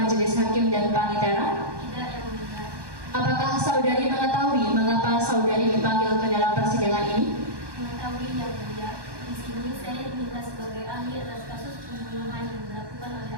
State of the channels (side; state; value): left; late; 1.2 ms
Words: hakim dan panitera? Tidak yang mulia. Apakah saudari mengetahui mengapa saudari dipanggil ke dalam persidangan ini? Mengetahui yang mulia, di sini saya diminta sebagai ahli atas kasus pembunuhan yang dilakukan oleh